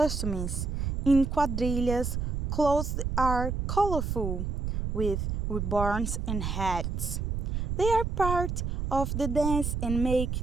In quadrilhas, clothes are colorful with ribbons and hats. They are part of the dance and make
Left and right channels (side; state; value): right; noise; rumble, 2 dB below the sound